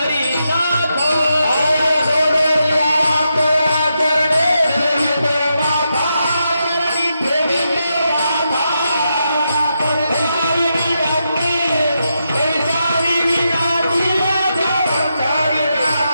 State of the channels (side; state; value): both; inverted; correlation -0.85